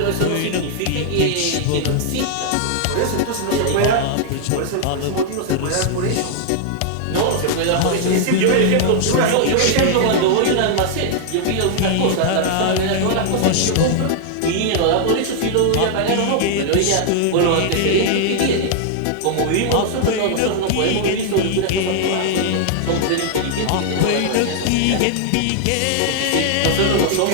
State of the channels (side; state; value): both; different; correlation -0.01